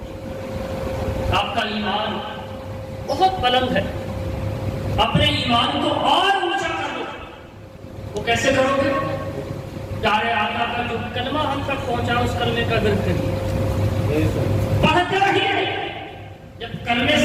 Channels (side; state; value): both; identical; correlation 1.00